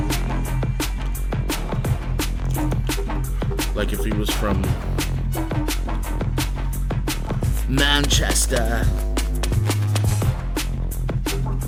Like if he was from Manchester.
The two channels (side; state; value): both; identical; correlation 1.00